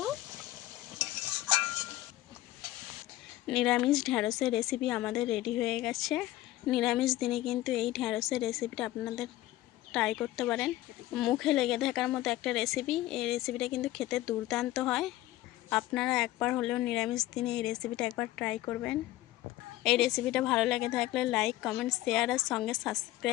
নিরামিষ ঢ্যাঁড়সের রেসিপি আমাদের রেডি হয়ে গেছে। নিরামিষ দিনে কিন্তু এই ঢ্যাঁড়সের রেসিপিটা আপনাদের ট্রাই করতে পারেন। মুখে লেগে থাকার মতো একটা রেসিপি। এই রেসিপিটা কিন্তু খেতে দুর্দান্ত হয়। আপনারা একবার হলেও নিরামিষ দিনে এই রেসিপিটা একবার ট্রাই করবেন। এই রেসিপিটা ভালো লেগে থাকলে লাইক, কমেন্ট, শেয়ার আর সঙ্গে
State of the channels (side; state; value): right; quieter; 16.0 dB